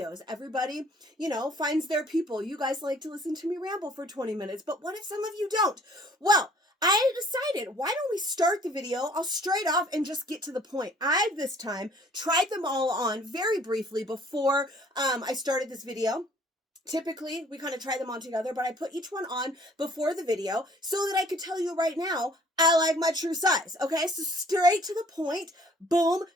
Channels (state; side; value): normal; both; correlation 0.56